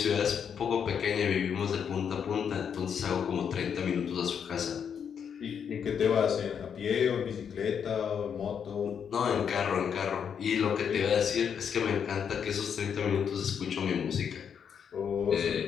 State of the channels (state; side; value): quieter; right; 7.5 dB